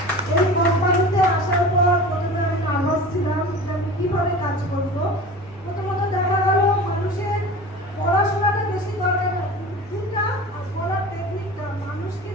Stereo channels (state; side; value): normal; both; correlation 0.36